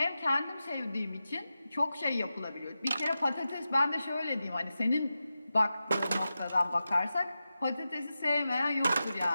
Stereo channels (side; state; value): both; inverted; correlation -0.92